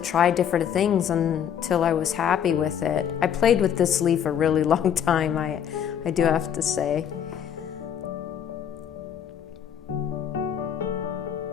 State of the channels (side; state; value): right; quieter; 8.8 dB